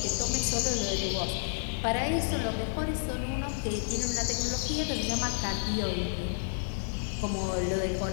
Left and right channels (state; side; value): silent; right; digital silence